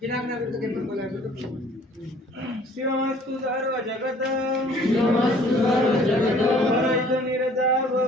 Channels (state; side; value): normal; both; correlation 0.55